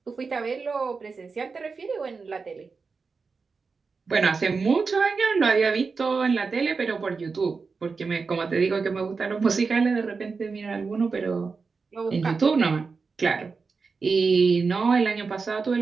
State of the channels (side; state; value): left; quieter; 4.7 dB